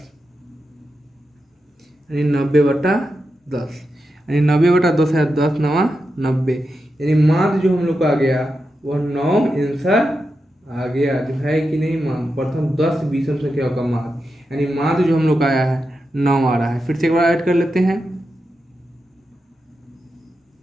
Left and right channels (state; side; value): normal; both; correlation 0.88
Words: यानी 90/10 यानी 90/10 है 10 × 9 90, यानी माध्य जो हम लोग का आ गया वह 9 आंसर आ गया। जो है कि नहीं मान प्रथम 10 विषम संख्याओं का माध्य, यानी माध्य जो हम लोग का आया है 9 आ रहा है। फिर से एक बार ऐड कर लेते हैं